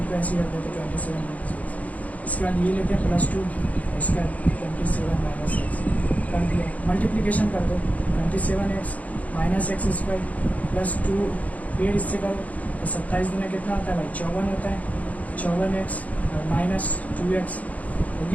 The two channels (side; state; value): right; late; 0.072 ms